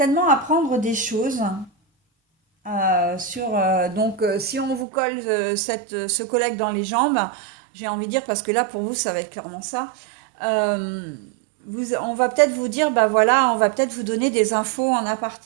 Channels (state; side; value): drops out; left; at 4.9 s